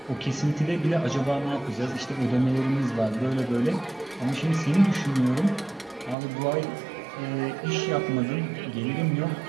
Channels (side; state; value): left; drops out; at 6.2 s